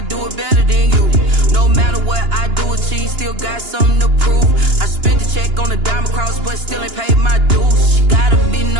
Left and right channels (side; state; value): left; late; 2.9 ms